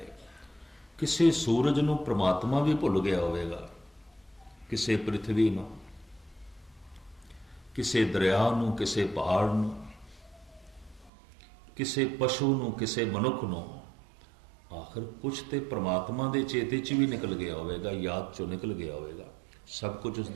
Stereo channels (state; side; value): drops out; left; at 11.1 s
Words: ਕਿਸੇ ਸੂਰਜ ਨੂੰ ਪ੍ਰਮਾਤਮਾ ਵੀ ਭੁੱਲ ਗਿਆ ਹੋਵੇਗਾ, ਕਿਸੇ ਪ੍ਰਿਥਵੀ ਨੂੰ, ਕਿਸੇ ਦਰਿਆ ਨੂੰ, ਕਿਸੇ ਪਹਾੜ ਨੂੰ, ਕਿਸੇ ਪਸ਼ੂ ਨੂੰ, ਕਿਸੇ ਮਨੁੱਖ ਨੂੰ, आखिर कुछ तो परमात्मा के चेते च भी निकल गया होगा, याद चो निकल गया होगा, सब कुछ